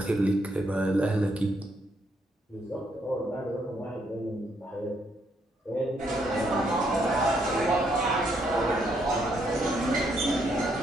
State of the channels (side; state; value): both; normal; correlation 0.74